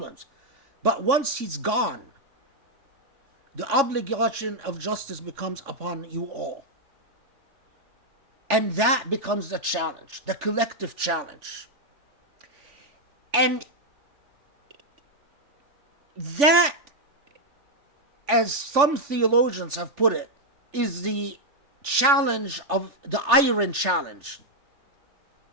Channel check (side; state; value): left; late; 3.5 ms